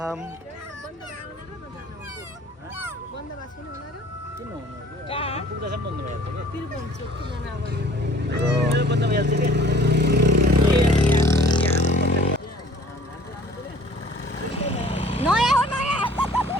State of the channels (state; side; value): normal; both; correlation 0.52